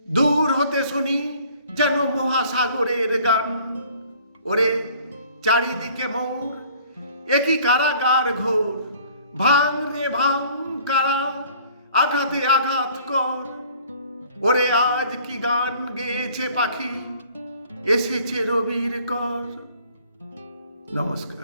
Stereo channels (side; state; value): both; inverted; correlation -0.54